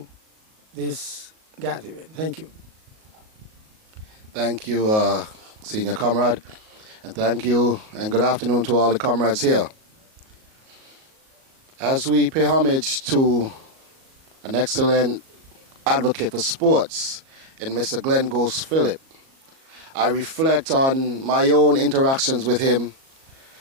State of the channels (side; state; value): left; late; 37 ms